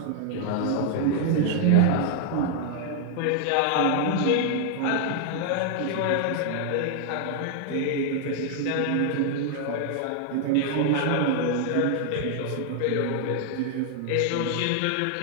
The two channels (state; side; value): different; both; correlation 0.00